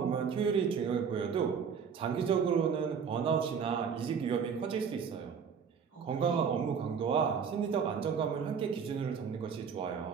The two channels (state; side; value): quieter; left; 6.6 dB